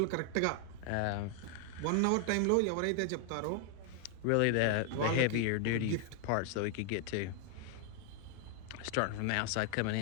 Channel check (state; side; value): different; both; correlation 0.00